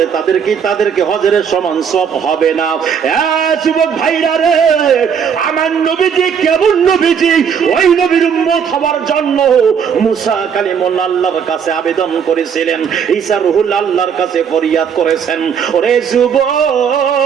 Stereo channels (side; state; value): left; quieter; 7.3 dB